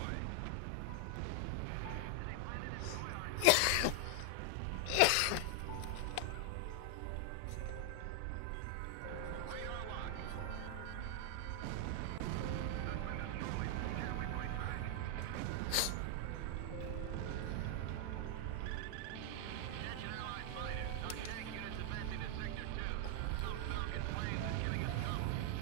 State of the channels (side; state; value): both; different; correlation 0.00